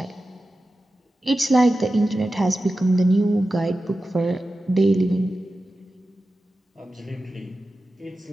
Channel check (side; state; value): both; normal; correlation 0.93